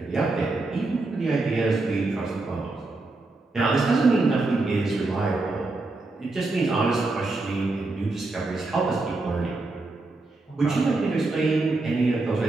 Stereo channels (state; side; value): quieter; left; 3.2 dB